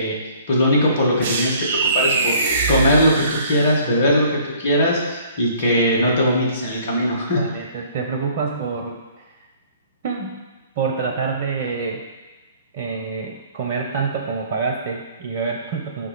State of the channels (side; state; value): both; inverted; correlation -0.55